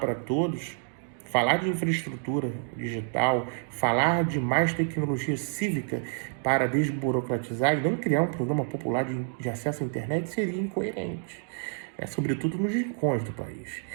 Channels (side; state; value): left; silent; 56 dB below the other